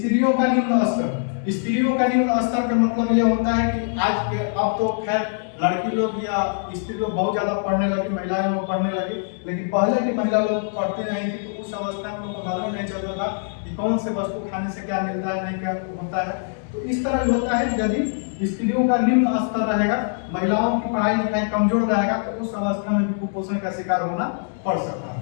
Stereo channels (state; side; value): silent; right; digital silence